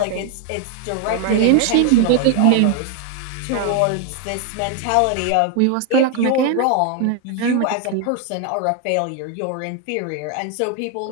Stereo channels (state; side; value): different; both; correlation 0.00